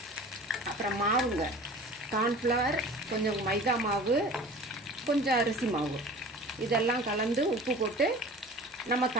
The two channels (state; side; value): normal; both; correlation 0.41